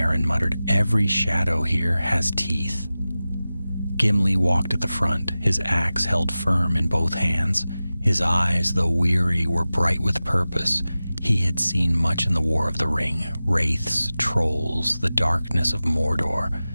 muttered. "Every shadow here has teeth." Gimli walked at the front, his axe held firm in both hands. His eyes, though weary, were bright with purpose. He had seen much in the War of the Ring, wraiths, trolls, the darkness of Mordor,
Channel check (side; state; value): both; inverted; correlation -0.96